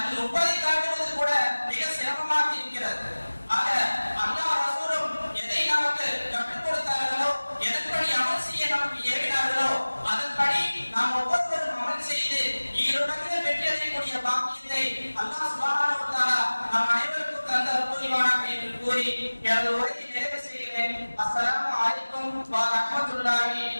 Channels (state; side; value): inverted; both; correlation -1.00